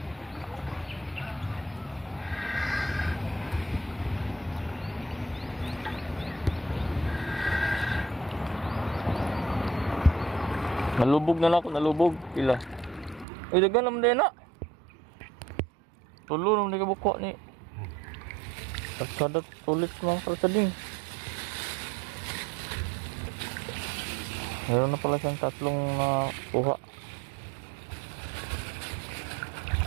Nalubog na lang ako, nalubog. Pila. Uy, dagan naman din na. Tulo naman di ka buko ni. Pagsadat tulit mga kalsading. Meron na pala siyang tatlong kuha.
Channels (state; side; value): drops out; left; at 13.2 s